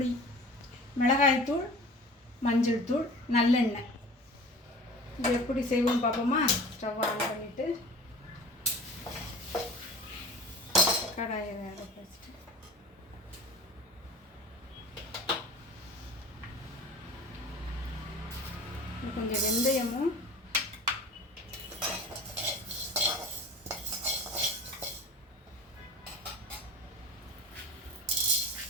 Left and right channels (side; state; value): both; normal; correlation 0.40